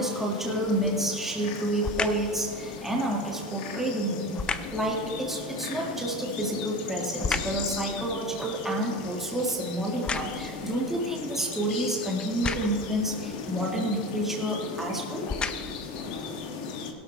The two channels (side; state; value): both; normal; correlation 0.32